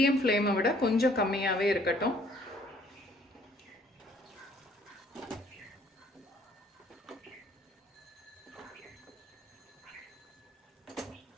ஃப்ளேமை விட கொஞ்சம் கம்மியாகவே இருக்கட்டும்.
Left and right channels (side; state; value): both; normal; correlation 0.60